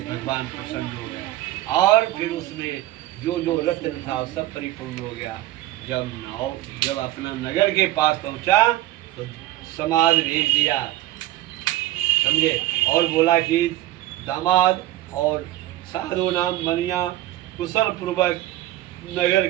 भगवान प्रसन्न हो गए। और फिर उसमें जो रत्न था वो सब परिपूर्ण हो गया। जब अपना नगर के पास पहुंचा तो समाज भेज दिया, समझे, और बोला कि दामाद और साधु नाम बनिया कुशल पूर्वक नगर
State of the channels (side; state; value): left; quieter; 15.4 dB